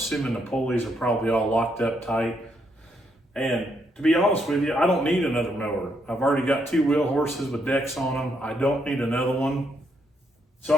the pulleys are probably all locked up tight. And to be honest with you, I don't need another mower. I've already got 2 wheel horses with decks on them. I don't need another one. So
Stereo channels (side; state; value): both; normal; correlation 0.76